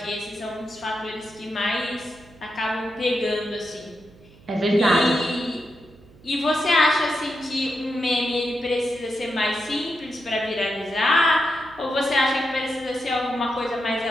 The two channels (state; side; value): noise; right; hum, 24 dB below the sound